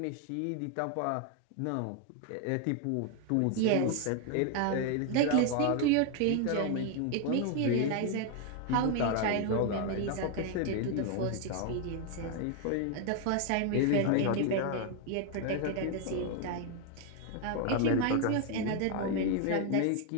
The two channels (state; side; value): different; both; correlation 0.01